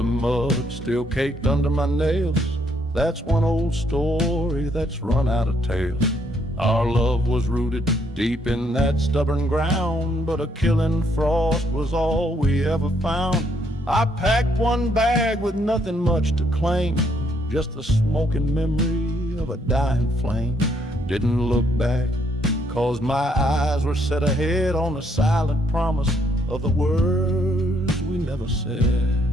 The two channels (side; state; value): both; normal; correlation 0.71